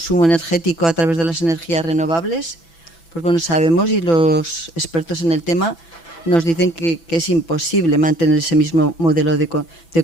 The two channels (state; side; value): late; right; 6.0 ms